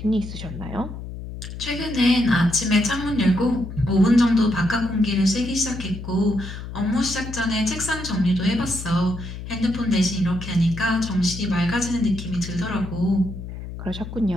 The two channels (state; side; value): noise; left; hum, 10 dB below the sound